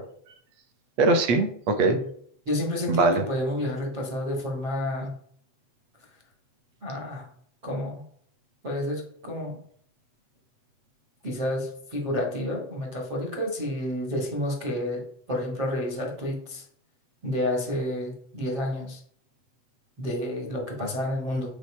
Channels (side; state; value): left; late; 8.3 ms